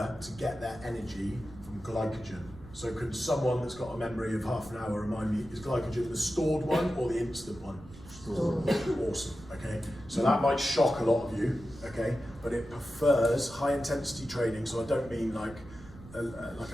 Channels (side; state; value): right; noise; rumble, 18 dB below the sound